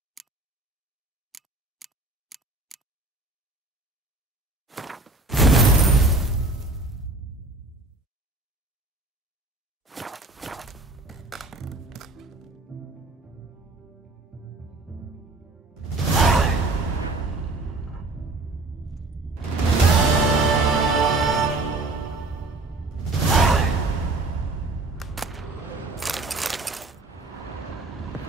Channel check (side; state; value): left; quieter; 3.1 dB